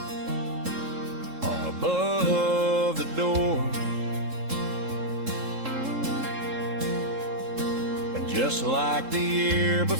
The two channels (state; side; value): late; left; 3.7 ms